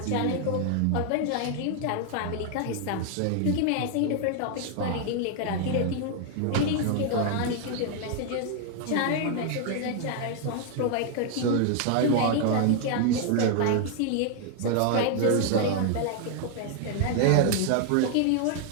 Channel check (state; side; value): different; both; correlation 0.00